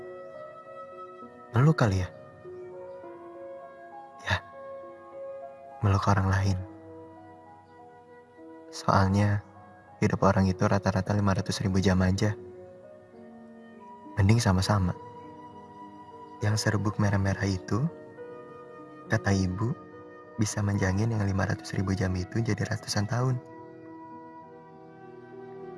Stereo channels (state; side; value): identical; both; correlation 1.00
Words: Meluk kali ya? Ya, meluk orang lain. Soalnya hidup orang itu rata-rata 500.000 jam aja. Mending sama-sama. Yang serbuk merah-merah itu, kata ibu, bisa menjangin yang 500.000 jam itu jadi ratusan tahun.